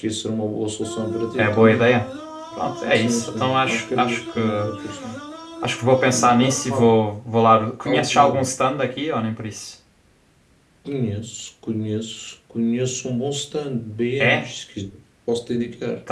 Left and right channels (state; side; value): identical; both; correlation 1.00